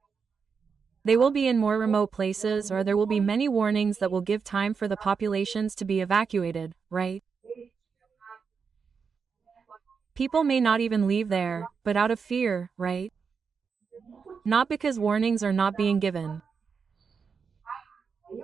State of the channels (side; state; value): left; quieter; 5.8 dB